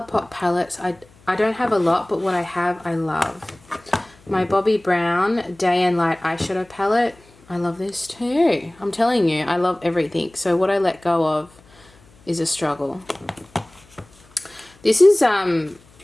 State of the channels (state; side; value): noise; left; hum, 28 dB below the sound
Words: palettes, I don't have a lot, but what I have, I love. My Bobbi Brown Day and Light eyeshadow palette. I love this too. I'm telling you, I love everything. So what I let go of is a struggle. This is